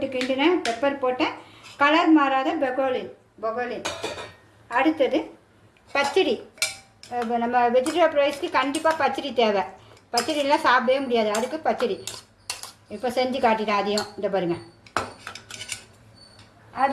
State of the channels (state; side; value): identical; both; correlation 1.00